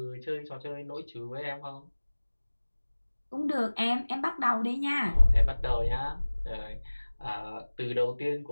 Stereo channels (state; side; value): inverted; both; correlation -1.00